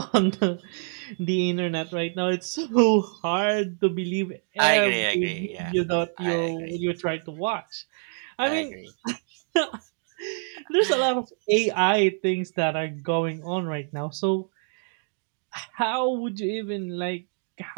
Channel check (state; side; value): silent; left; 56 dB below the other